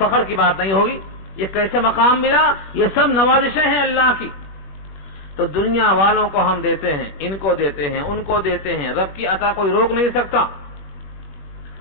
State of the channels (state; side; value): late; right; 21 ms